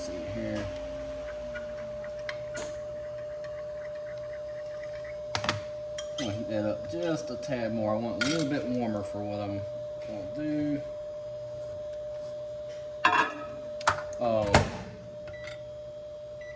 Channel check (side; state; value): both; identical; correlation 1.00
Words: here. I'm gonna heat that up just a tad more. I want a little bit warmer for what I'm gonna do.